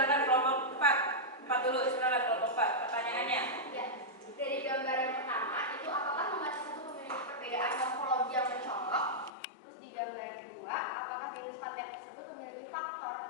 kelompok 4. 4 dulu, silakan kelompok 4. Pertanyaannya. Ya, dari gambar yang pertama itu apakah membaca satu memiliki perbedaan morfologi yang mencolok? Terus di gambar yang kedua, apakah jenis paten tersebut memiliki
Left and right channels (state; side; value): drops out; right; at 9.3 s